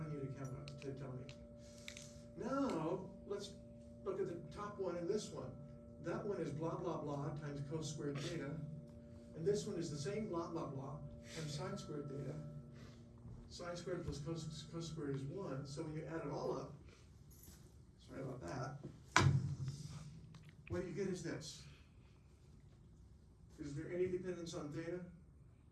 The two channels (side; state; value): both; identical; correlation 1.00